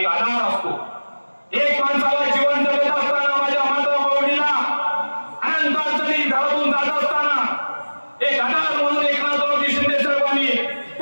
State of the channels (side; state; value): both; inverted; correlation -1.00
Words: आधार असतो. एक माणसाला जीवन जगत असताना माझ्या माता माऊलीला अनंत अडचणी घरातून जात असताना एक आधार म्हणून एकनाथरावजी शिंदे साहेबांनी